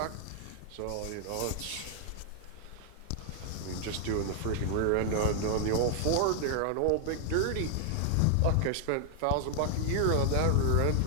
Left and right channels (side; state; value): both; different; correlation 0.00